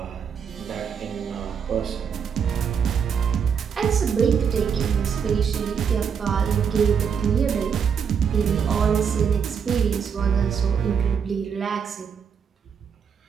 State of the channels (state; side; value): quieter; left; 7.0 dB